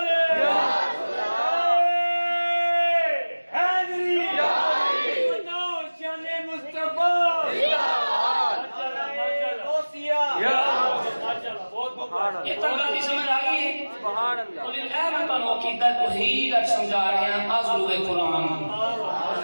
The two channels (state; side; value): inverted; both; correlation -1.00